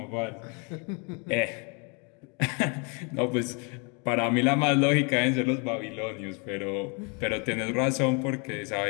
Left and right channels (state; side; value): quieter; right; 34.1 dB